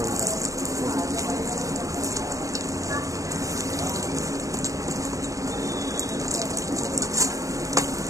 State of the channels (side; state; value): left; late; 0.16 ms